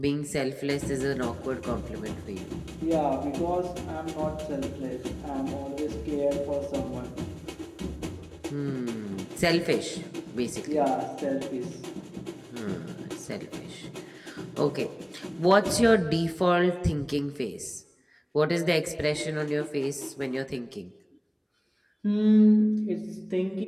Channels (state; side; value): identical; both; correlation 1.00